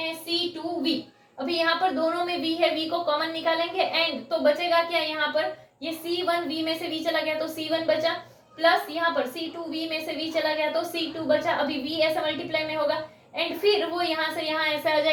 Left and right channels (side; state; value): both; identical; correlation 1.00